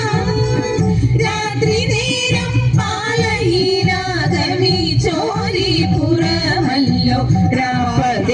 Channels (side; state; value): both; identical; correlation 1.00